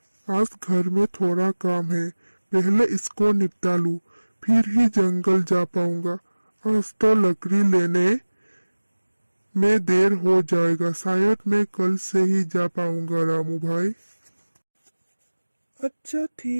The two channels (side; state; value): both; inverted; correlation -1.00